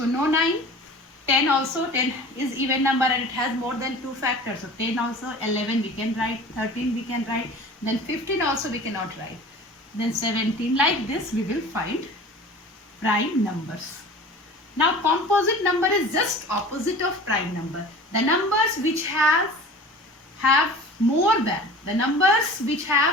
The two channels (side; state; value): both; normal; correlation 0.41